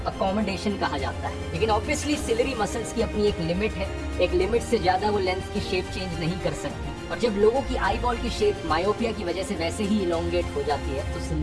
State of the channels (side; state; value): both; identical; correlation 1.00